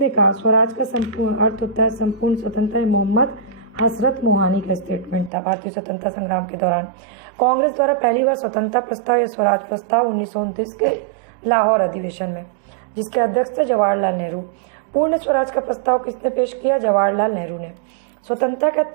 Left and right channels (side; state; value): left; drops out; at 5.3 s